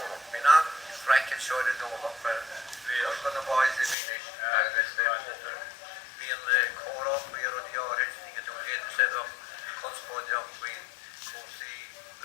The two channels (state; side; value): drops out; right; at 4.0 s